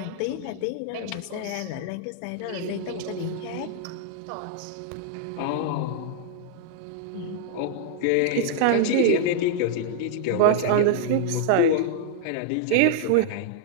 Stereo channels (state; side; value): different; both; correlation -0.01